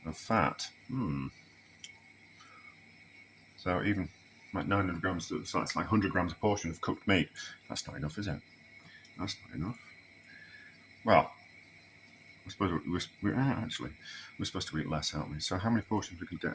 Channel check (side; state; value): both; identical; correlation 1.00